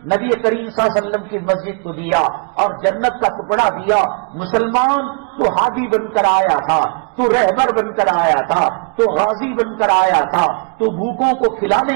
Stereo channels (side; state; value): left; quieter; 37.4 dB